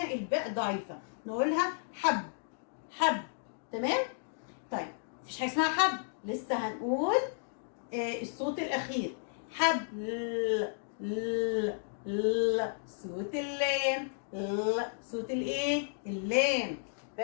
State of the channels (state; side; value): silent; right; digital silence